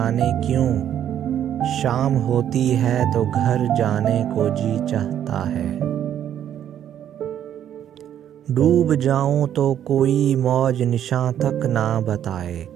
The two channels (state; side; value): quieter; left; 10.2 dB